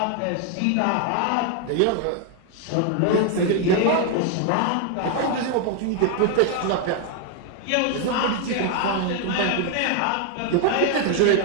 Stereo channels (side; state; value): both; different; correlation 0.00